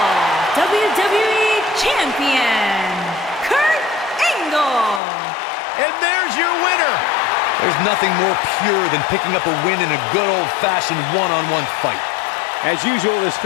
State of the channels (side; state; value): right; drops out; at 5.0 s